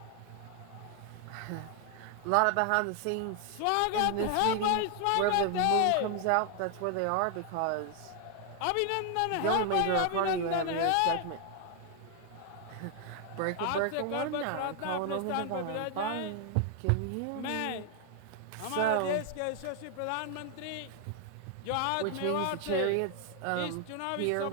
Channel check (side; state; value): both; different; correlation 0.00